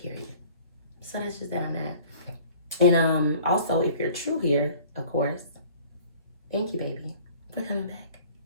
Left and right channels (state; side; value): inverted; both; correlation -0.51